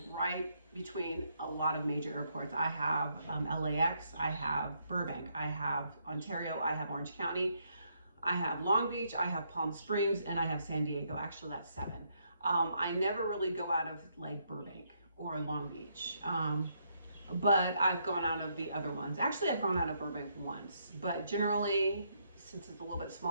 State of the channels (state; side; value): inverted; both; correlation -0.75